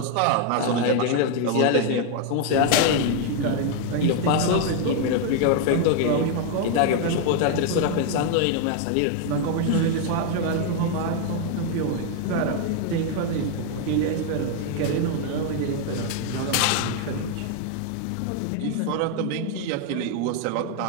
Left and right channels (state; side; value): different; both; correlation 0.00